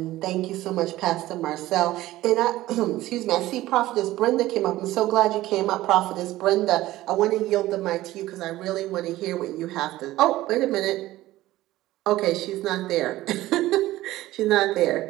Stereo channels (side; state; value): left; quieter; 16.2 dB